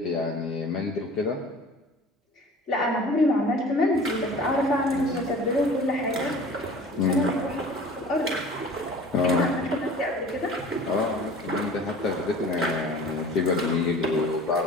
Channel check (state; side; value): normal; both; correlation 0.43